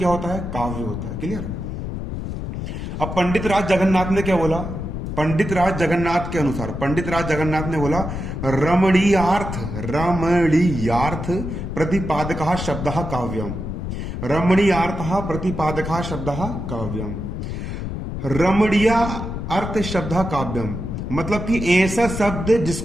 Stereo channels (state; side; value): noise; left; rumble, 5 dB below the sound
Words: होता है? काव्य होता है। क्लियर। अब पंडित राज जगन्नाथ ने क्या बोला? पंडित राज जगन्नाथ के अनुसार, पंडित राज जगन्नाथ ने बोला, रमणीयार्थ, रमणीयार्थ प्रतिपादकः शब्दः काव्यम। रमणीयार्थः प्रतिपादकः शब्दः काव्यम। रमणीय अर्थ शब्द काव्यम मतलब कि ऐसा शब्द